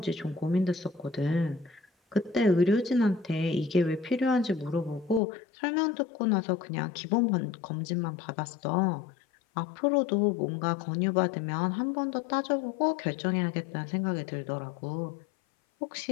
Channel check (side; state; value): right; drops out; at 5.2 s